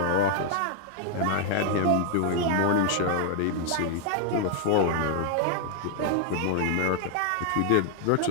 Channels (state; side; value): different; both; correlation 0.00